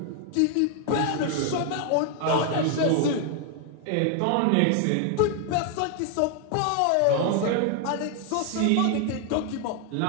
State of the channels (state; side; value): different; both; correlation 0.00